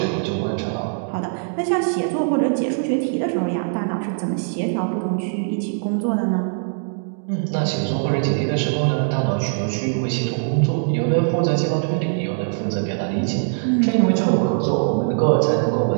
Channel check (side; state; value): left; silent; 65 dB below the other